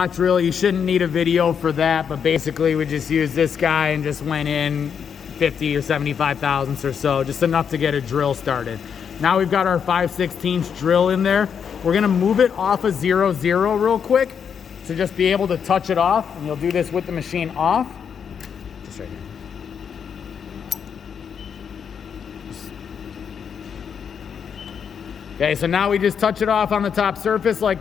drill. You shouldn't need a video for that, but basically we just used this guy and just went in 50 or 75 thousandths or so, just enough to get a drill started. Now we've got our 5/16 drill in there. We're gonna move it off of 0, 0 real quick to just be able to touch it off, and you'll do this with the machine off. Just right here. Okay, so now we just touch it off on the top surface like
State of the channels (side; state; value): right; quieter; 7.3 dB